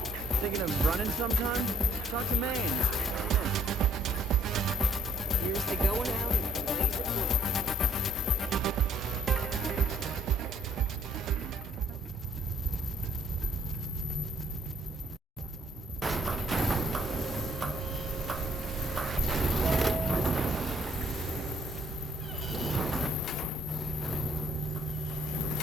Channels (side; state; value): both; normal; correlation 0.63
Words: Thinking of running sometime? Talk to Maine. Here's to going out and blazing away.